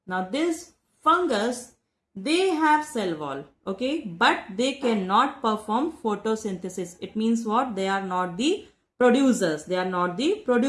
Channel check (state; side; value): identical; both; correlation 1.00